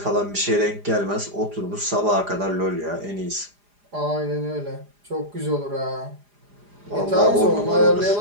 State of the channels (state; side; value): late; left; 4.9 ms